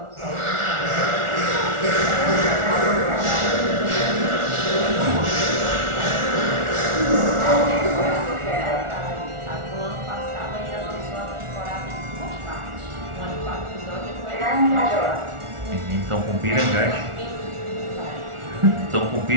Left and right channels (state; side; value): late; left; 1.4 ms